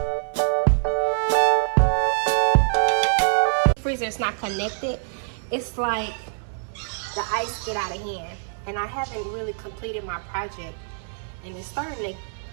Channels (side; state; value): left; silent; 61 dB below the other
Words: Freezer is not connected. It's like the ice get out of hand, and I haven't really completed my project, and it's starting to